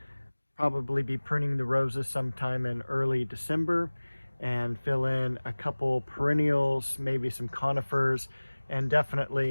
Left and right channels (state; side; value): inverted; both; correlation -1.00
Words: probably be pruning the roses sometime in early December, and fill in a couple perennials, maybe some conifers, and